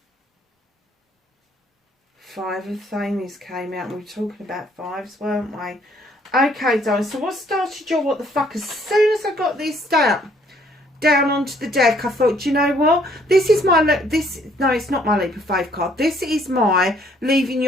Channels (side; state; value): both; normal; correlation 0.64